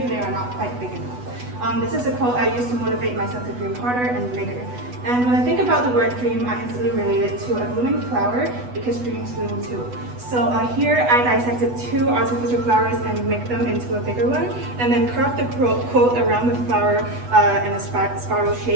They Are Not Quite Big Enough. This is a quote I used to motivate myself to dream harder and bigger. And when I think about the word dream, I instantly relate it to a blooming flower because dreams bloom too. So here I dissected 2 artificial flowers and make them into a bigger one, and then carved the quote around the flower in a spiral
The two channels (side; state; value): left; late; 8.1 ms